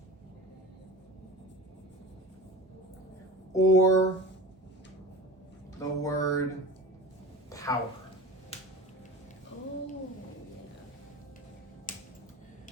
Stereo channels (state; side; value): normal; both; correlation 0.35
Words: or the word power. Oh.